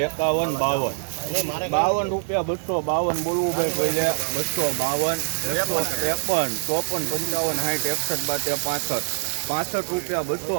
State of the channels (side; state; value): left; silent; 63 dB below the other